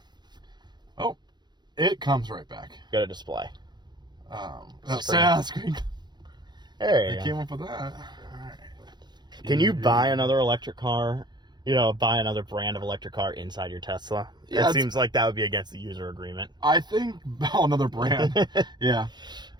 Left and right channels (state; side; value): late; left; 0.21 ms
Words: Oh, it comes right back. Got a display. Screen. There you They go. came up with that. All right. Can you buy another electric car? You know, buy another brand of electric car inside your Tesla? Yeah, it seems like that would be against the user agreement. I think another brand. Yeah.